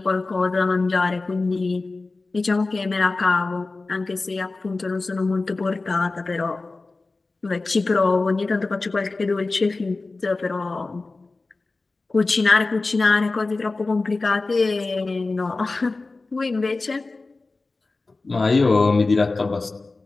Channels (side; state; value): right; quieter; 3.5 dB